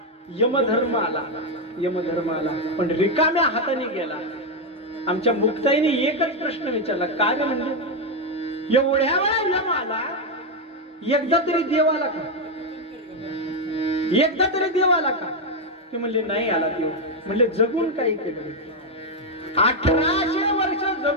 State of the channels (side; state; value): both; normal; correlation 0.04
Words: यमधर्म आला पण रिकाम्या हाताने गेला. आमच्या मुक्ताईने एकच प्रश्न विचारला, काय म्हणजे एवढ्या वेळा यम आला, एकदा तरी देव आला का? ते म्हणले नाही आला देव. म्हणले जगून काही केलं? 1800 वर्ष